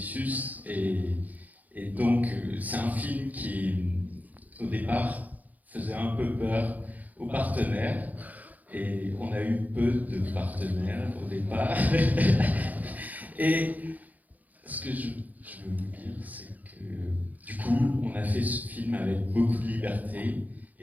et donc c'est un film qui, au départ, faisait un peu peur aux partenaires et on a eu peu de partenaires au départ. Et ce que je veux vous dire, c'est que du coup, on a fait ce film avec beaucoup de liberté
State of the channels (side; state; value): left; late; 0.080 ms